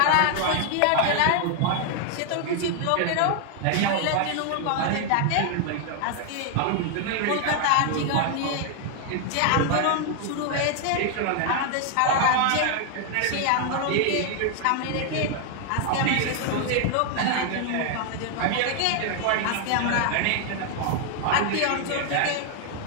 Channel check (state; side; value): different; both; correlation 0.00